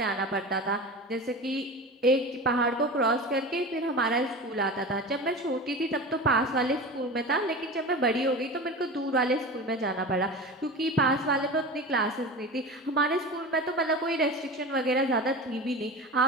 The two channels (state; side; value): normal; both; correlation 0.30